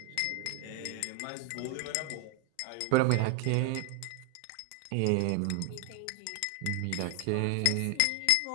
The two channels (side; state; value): both; different; correlation 0.01